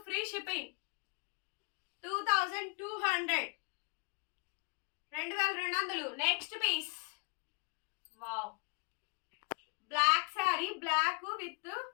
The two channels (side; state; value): right; quieter; 33.4 dB